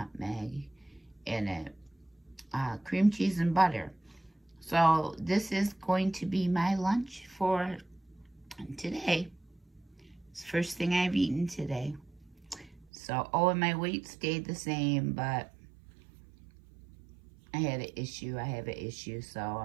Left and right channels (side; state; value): left; drops out; at 12.9 s